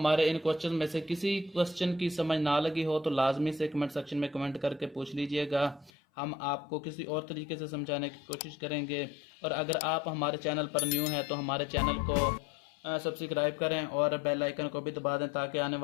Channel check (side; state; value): right; drops out; at 5.9 s